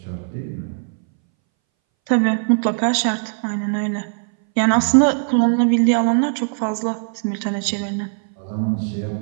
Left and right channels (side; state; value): left; silent; 63 dB below the other